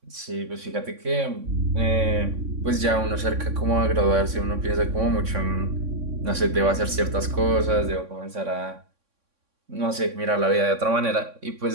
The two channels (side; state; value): left; late; 3.6 ms